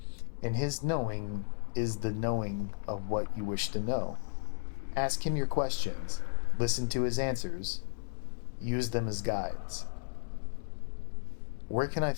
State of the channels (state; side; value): silent; right; digital silence